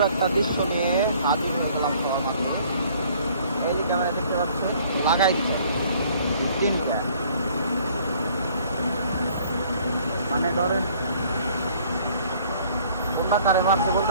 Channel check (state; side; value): inverted; both; correlation -0.57